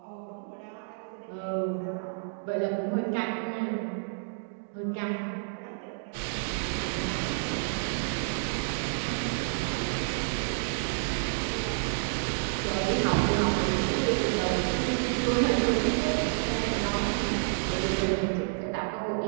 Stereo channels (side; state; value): left; silent; digital silence